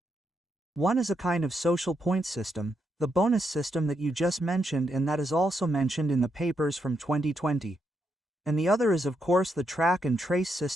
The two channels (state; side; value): normal; both; correlation 0.80